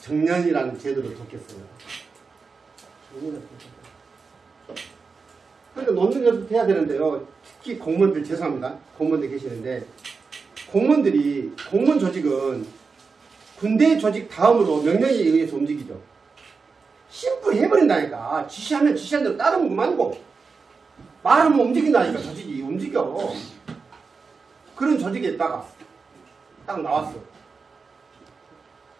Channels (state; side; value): quieter; left; 4.8 dB